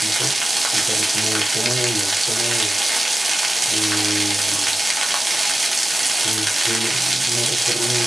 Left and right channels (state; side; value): normal; both; correlation 0.94